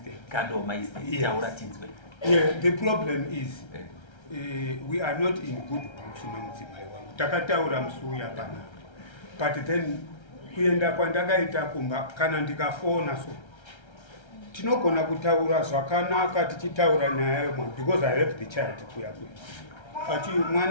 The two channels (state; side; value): late; right; 1.3 ms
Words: Yeah, the problem is we are not in good books nomudzimai wangu. Takataura musuya pana. But then kuenda kwandakaita kumba kana ndikafona so tinogona kutaura zvakanaka tichitaura naye because I have the child kuya ati